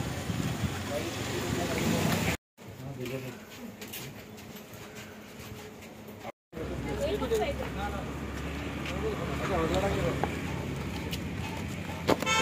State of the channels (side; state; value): both; identical; correlation 1.00